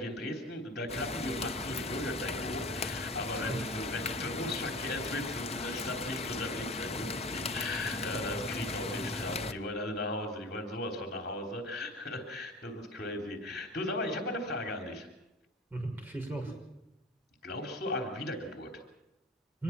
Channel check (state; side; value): normal; both; correlation 0.37